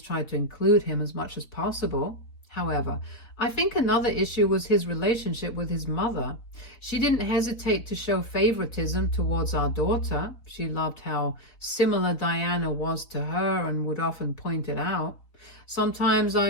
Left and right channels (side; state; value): right; late; 4.0 ms